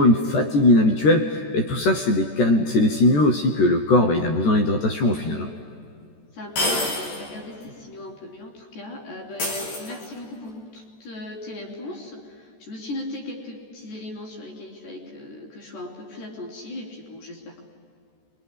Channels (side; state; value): right; late; 14 ms